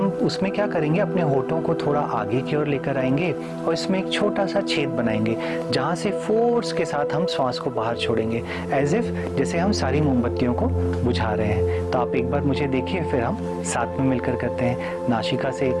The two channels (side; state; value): both; identical; correlation 1.00